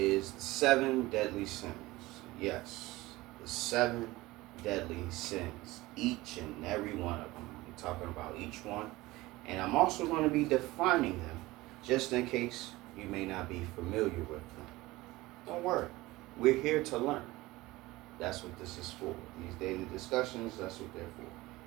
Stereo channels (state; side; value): quieter; left; 19.5 dB